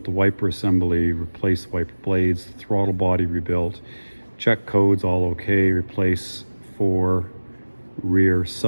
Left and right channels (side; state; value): both; inverted; correlation -1.00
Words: the wiper assembly, replace wiper blades, throttle body rebuilt, check codes all okay, replace 4 rear